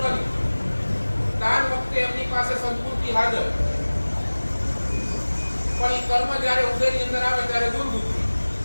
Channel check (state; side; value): inverted; both; correlation -1.00